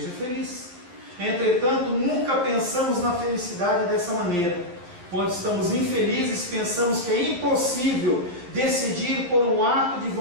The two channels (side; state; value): left; late; 11 ms